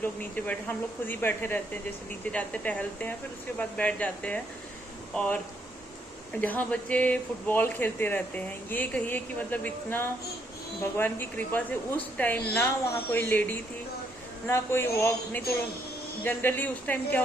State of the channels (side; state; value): both; normal; correlation 0.73